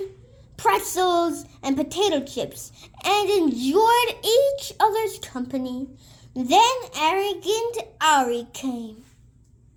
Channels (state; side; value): identical; both; correlation 1.00